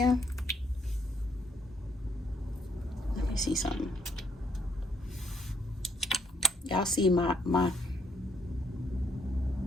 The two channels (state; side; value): normal; both; correlation 0.71